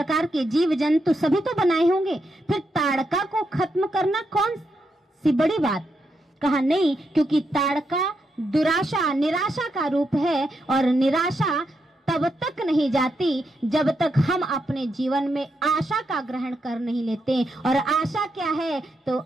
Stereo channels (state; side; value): normal; both; correlation 0.82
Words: के जीव जंतु सभी तो बनाए होंगे, फिर ताड़का को खत्म करना कौन सी बड़ी बात? कहा नहीं, क्योंकि ताड़का दुराशा निराशा का रूप है, और निराशा तब तक नहीं जाती जब तक हम अपने जीवन में आशा का ग्रहण कर नहीं लेते। और आशा क्या है? तो